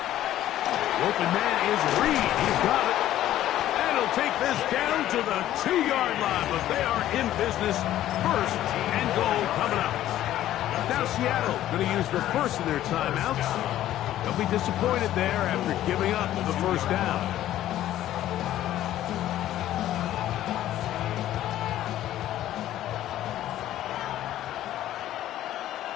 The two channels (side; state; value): right; quieter; 13.1 dB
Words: Open man is Reed. He's got it. And he'll take this down to the 2-yard line, but they are in business. 1st and goal coming up. Now Seattle going to use the first of their timeouts. They'll be disappointed there after giving up the 1st down.